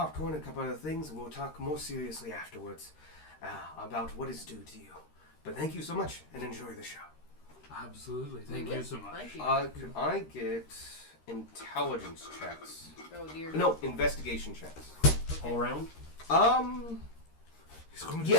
and a couple other things, and we'll talk more seriously afterwards. about what is due to you. But thank you so much, and enjoy the show. Absolutely. Thank you so much. Thank you. Could I get intelligence checks? Oh dear. No, investigation checks. All around? He's going to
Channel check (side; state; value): right; late; 13 ms